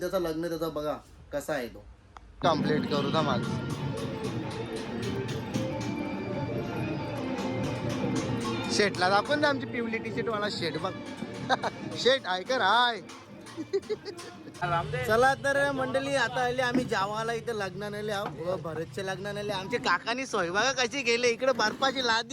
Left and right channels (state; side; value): identical; both; correlation 1.00